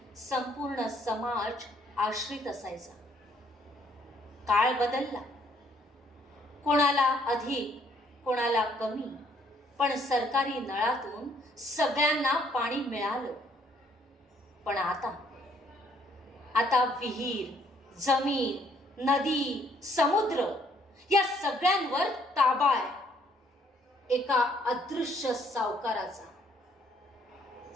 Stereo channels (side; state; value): both; normal; correlation 0.65